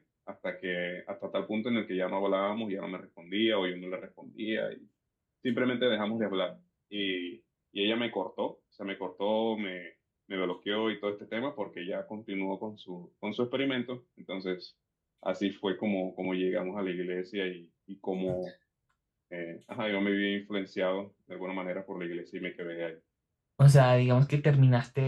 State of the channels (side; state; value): both; identical; correlation 1.00